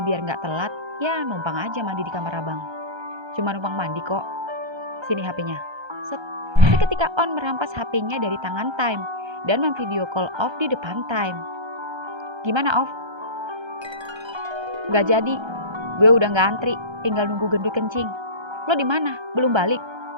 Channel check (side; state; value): left; late; 1.3 ms